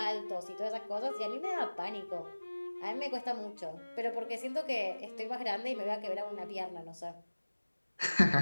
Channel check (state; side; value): inverted; both; correlation -1.00